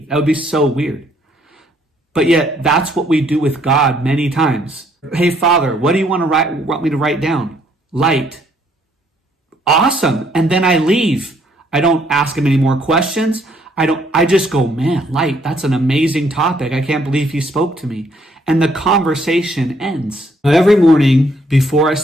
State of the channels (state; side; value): normal; both; correlation 0.67